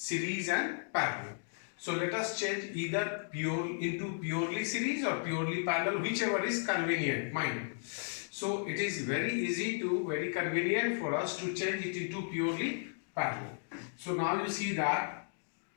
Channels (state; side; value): silent; right; digital silence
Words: and parallel. So let us change either into purely series or purely parallel, whichever is convenient, mind. So it is very convenient for us to change it into purely parallel. So now you see that